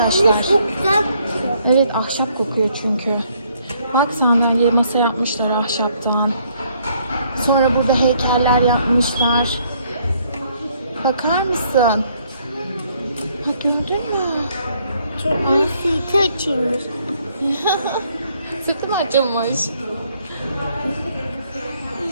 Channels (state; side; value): inverted; both; correlation -0.67